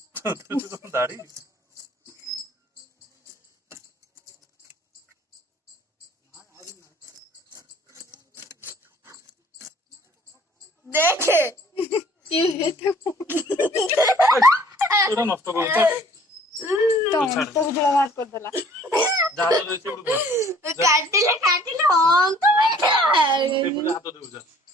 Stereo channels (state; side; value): normal; both; correlation 0.55